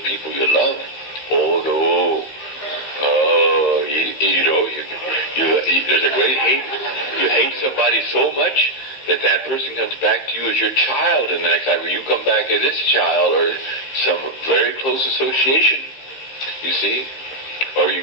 people you love. Oh, no. Oh, there's a great hate. You hate somebody so much that person comes back to you as your child, and the next time you come back as its child or some very close association, you see? Or you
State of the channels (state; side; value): late; right; 15 ms